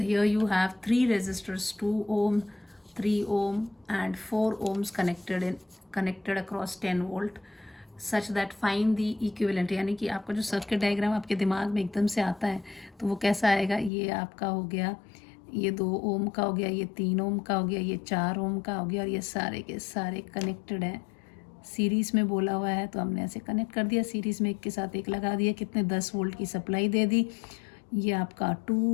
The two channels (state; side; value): drops out; right; at 13.9 s